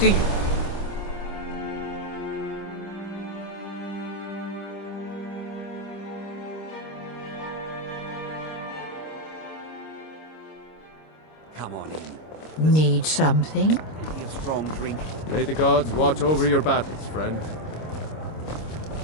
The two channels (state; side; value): late; right; 26 ms